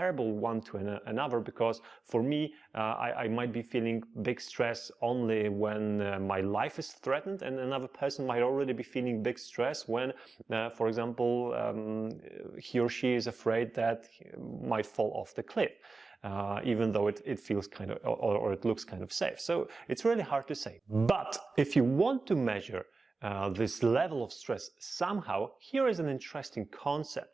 one to another, because for me, I might be feeling big stress only when my life is threatened, and another person might already be feeling big stress when, for example, he or she is afraid that he might fall off the cliff, even though it feels kind of, or it looks kind of safe. So it's really hard to say. But if you want to measure this level of stress somehow, here is an interesting concept.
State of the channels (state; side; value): quieter; left; 3.9 dB